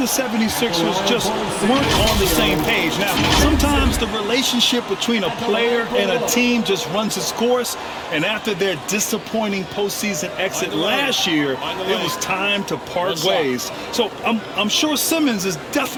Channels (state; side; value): identical; both; correlation 1.00